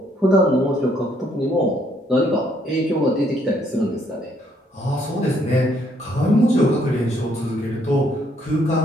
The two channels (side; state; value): both; normal; correlation 0.69